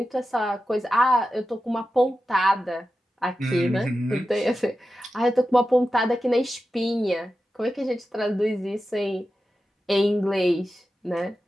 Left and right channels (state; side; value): normal; both; correlation 0.92